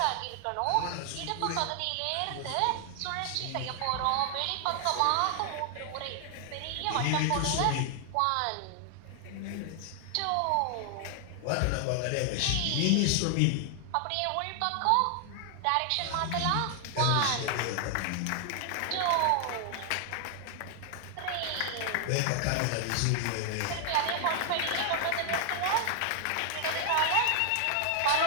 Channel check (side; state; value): both; different; correlation 0.00